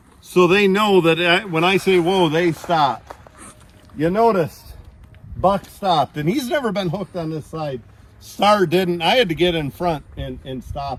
so they know that when I say whoa, they stop. You noticed Buck stopped, and he's never been hooked on this side. Star didn't. I had to get in front and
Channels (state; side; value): identical; both; correlation 1.00